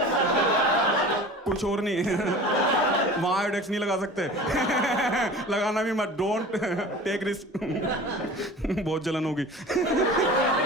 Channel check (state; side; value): normal; both; correlation 0.39